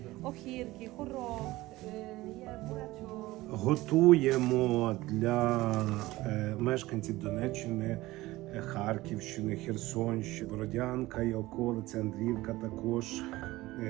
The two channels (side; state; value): left; quieter; 18.5 dB